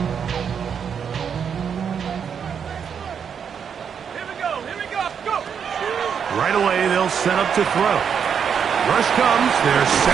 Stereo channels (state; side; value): quieter; left; 7.3 dB